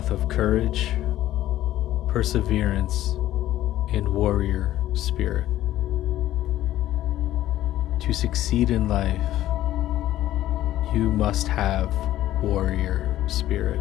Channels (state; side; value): quieter; right; 13.8 dB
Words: of courage, perseverance, and warrior spirit. To succeed in life, you must have warrior spirit.